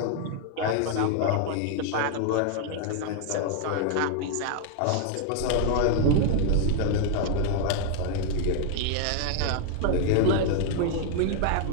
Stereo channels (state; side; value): different; both; correlation 0.00